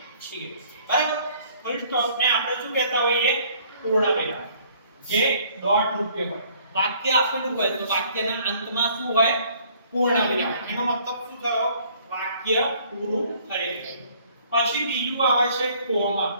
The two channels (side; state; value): both; inverted; correlation -0.59